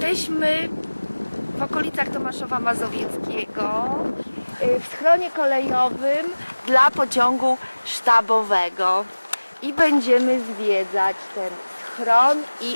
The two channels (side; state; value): both; inverted; correlation -1.00